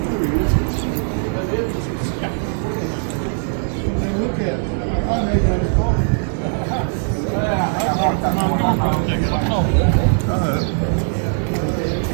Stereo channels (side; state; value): left; silent; 63 dB below the other